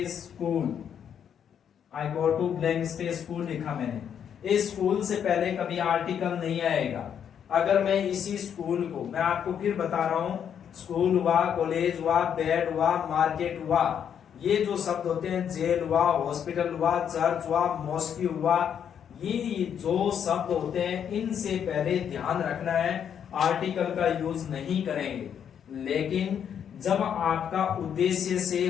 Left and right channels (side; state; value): right; quieter; 8.5 dB